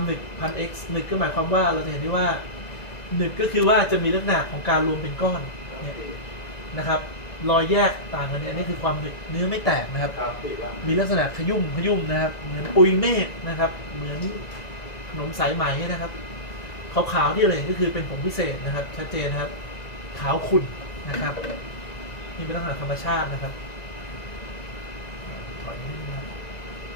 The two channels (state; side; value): late; right; 1.9 ms